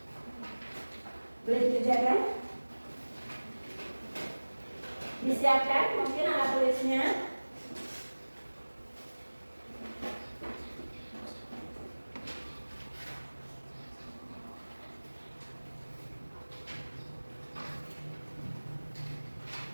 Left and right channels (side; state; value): both; inverted; correlation -1.00